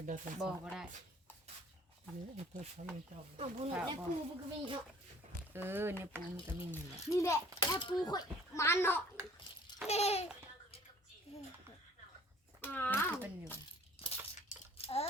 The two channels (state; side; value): normal; both; correlation 0.53